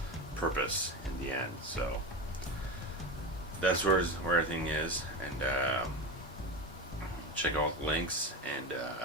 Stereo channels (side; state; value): both; normal; correlation 0.23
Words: purpose in the end. So that's where everything is, and check out the links, and